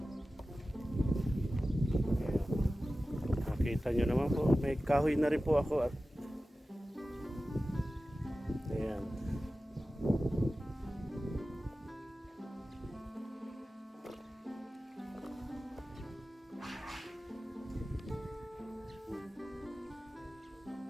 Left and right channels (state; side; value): normal; both; correlation 0.95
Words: Kita nyo naman po, may kahoy na rin po ako at ayan.